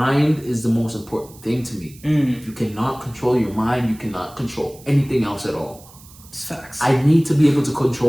is the most important thing to me. If you cannot control your mind, you cannot control anything else at all. It's facts. I need to be able to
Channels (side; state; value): right; noise; hiss, 22 dB below the sound